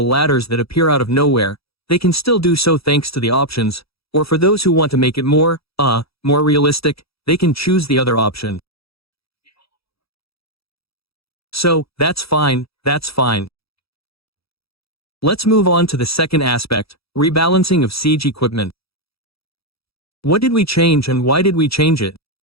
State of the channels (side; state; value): right; late; 0.76 ms